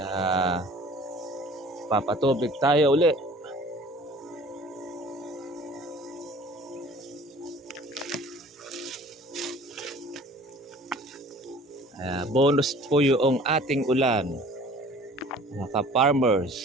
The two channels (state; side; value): normal; both; correlation 0.48